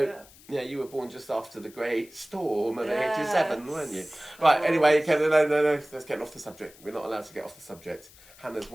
yeah, you were born just after the Great Storm of 87, weren't you? Right, anyway, no, let's get off the subject. We're not allowed to get off the subject. Hannah's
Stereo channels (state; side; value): noise; left; hiss, 23 dB below the sound